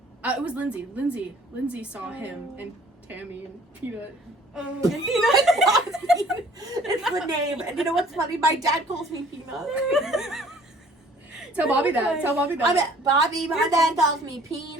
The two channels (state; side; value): normal; both; correlation 0.55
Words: It was Lindsay. Lindsay saw him and Tammy and Peanut. Oh, and Peanut. It's the name. And you know what's funny? My dad calls me Peanut. Tell Bobby that. Tell Bobby that. I'm at Bobby. My dad calls me